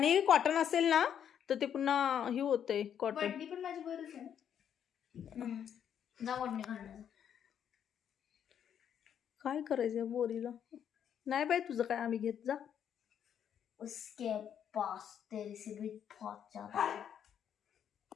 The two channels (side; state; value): right; quieter; 8.9 dB